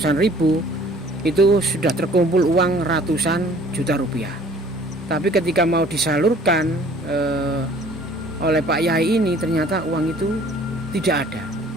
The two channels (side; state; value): both; normal; correlation 0.53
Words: ribu, itu sudah terkumpul uang ratusan juta rupiah. Tapi ketika mau disalurkan oleh Pak Yai ini, ternyata uang itu tidak ada.